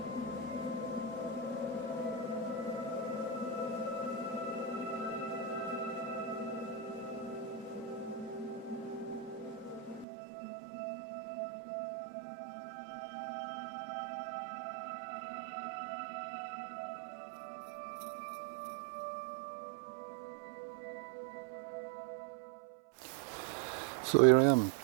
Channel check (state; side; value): drops out; left; at 10.1 s